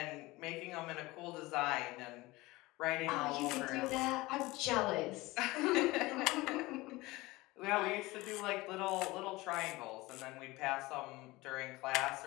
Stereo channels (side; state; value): right; quieter; 20.7 dB